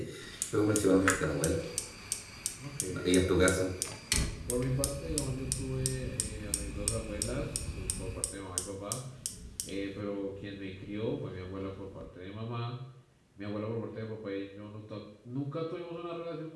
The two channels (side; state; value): both; identical; correlation 1.00